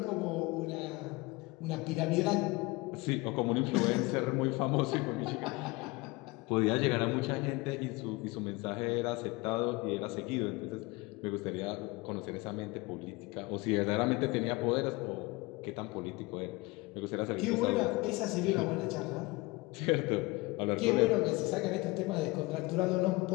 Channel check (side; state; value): right; quieter; 23.3 dB